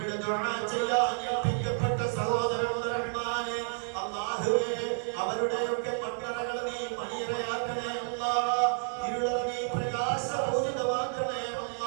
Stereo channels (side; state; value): left; silent; digital silence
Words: ദുആ ചെയ്യാൻ ഏൽപ്പിക്കപ്പെട്ട സഹോദരനുണ്ട് റഹ്മാനെ. അല്ലാഹുവേ, അവരുടെയൊക്കെ മക്കളകൾ നീ മണിയറയാക്കണേ അല്ലാഹ്. ഇരുളർ നീ പ്രകാശപൂരിതമാക്കണേ